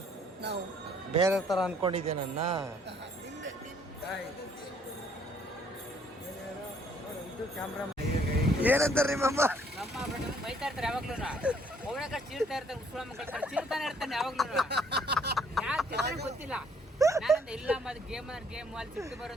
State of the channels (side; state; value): both; normal; correlation 0.63